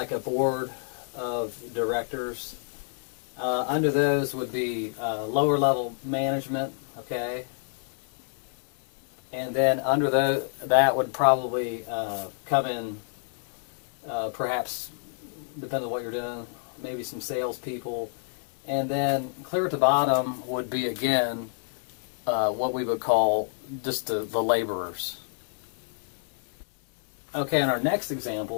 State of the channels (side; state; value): right; silent; digital silence